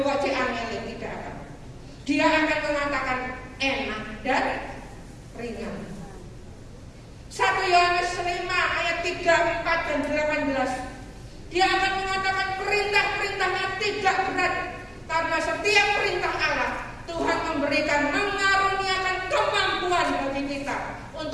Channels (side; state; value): both; identical; correlation 1.00